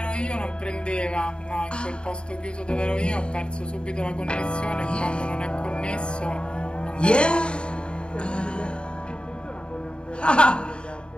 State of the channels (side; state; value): right; late; 0.052 ms